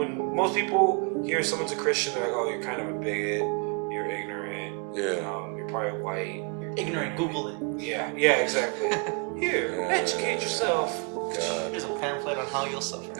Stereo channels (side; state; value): left; quieter; 35.8 dB